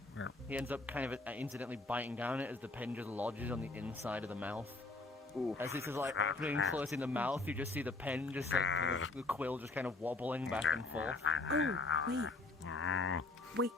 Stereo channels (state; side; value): quieter; right; 3.3 dB